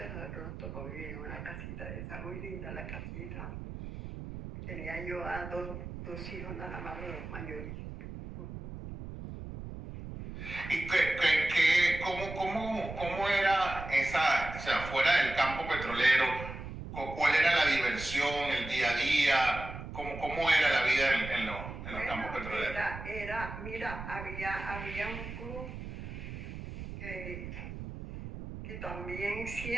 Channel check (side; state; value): right; noise; rumble, 9 dB below the sound